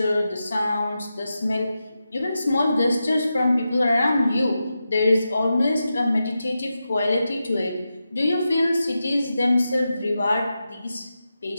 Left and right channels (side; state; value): both; inverted; correlation -0.90